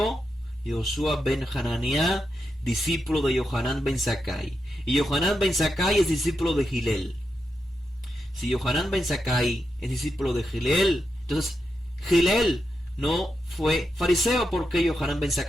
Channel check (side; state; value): both; normal; correlation 0.86